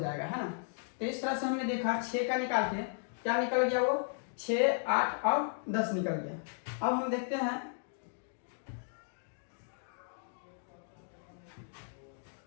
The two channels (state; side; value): silent; right; digital silence